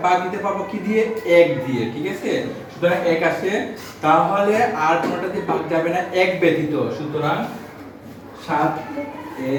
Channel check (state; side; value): identical; both; correlation 1.00